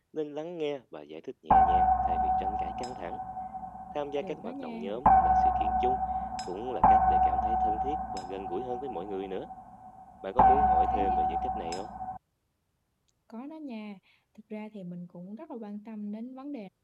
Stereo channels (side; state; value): both; identical; correlation 1.00